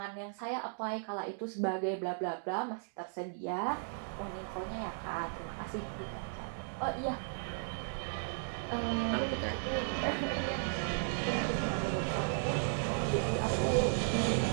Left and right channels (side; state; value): left; silent; digital silence